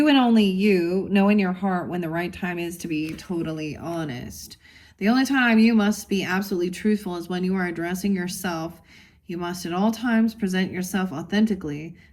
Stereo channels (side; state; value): both; identical; correlation 1.00